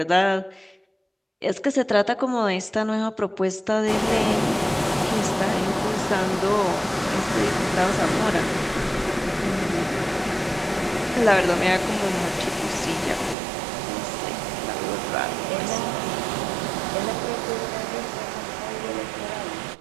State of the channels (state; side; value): drops out; left; at 13.4 s